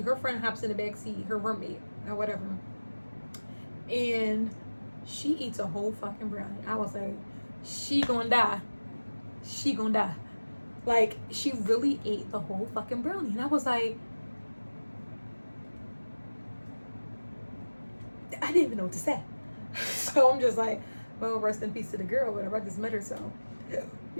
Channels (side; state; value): both; inverted; correlation -1.00